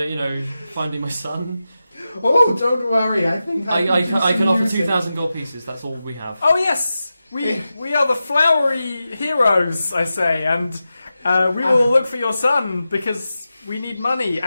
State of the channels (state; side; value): inverted; both; correlation -0.92